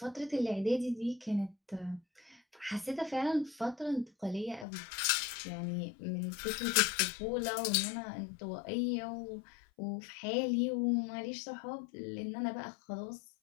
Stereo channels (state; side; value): drops out; right; at 4.7 s